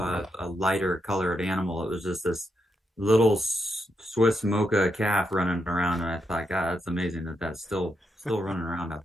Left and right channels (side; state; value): both; normal; correlation 0.82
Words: lighter colored animal. It was just this little Swiss mocha calf running around, and I thought, God, that's amazing that's still running around out